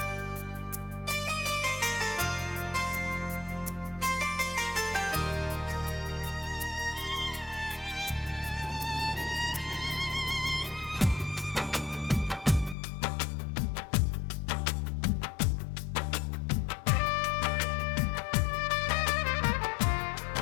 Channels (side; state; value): right; drops out; at 12.8 s